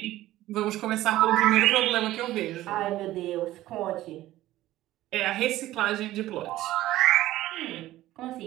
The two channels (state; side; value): quieter; left; 15.4 dB